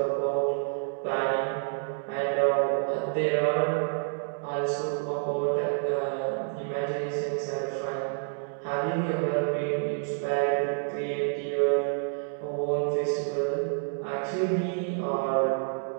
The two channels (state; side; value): silent; left; digital silence